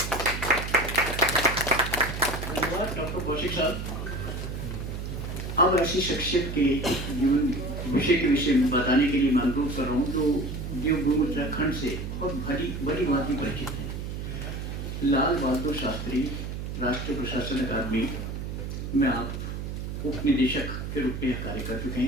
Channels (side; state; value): right; noise; hum, 5 dB below the sound